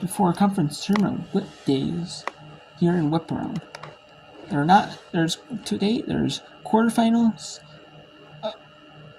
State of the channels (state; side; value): identical; both; correlation 1.00